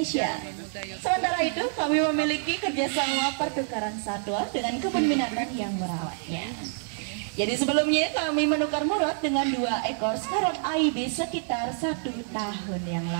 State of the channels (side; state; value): left; silent; digital silence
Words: Sementara itu, kami memiliki kerjasama pertukaran satwa dengan kebun binatang yang merawatnya. Jadi sebelumnya kami menukar Murad dengan 2 ekor scarlet ibis sekitar 1 tahun yang